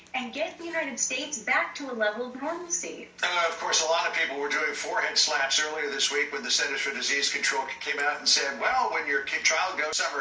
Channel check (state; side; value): identical; both; correlation 1.00